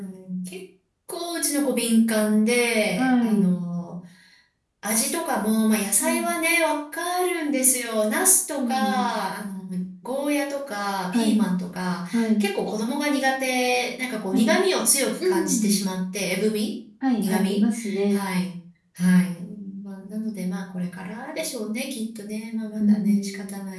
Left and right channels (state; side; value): identical; both; correlation 1.00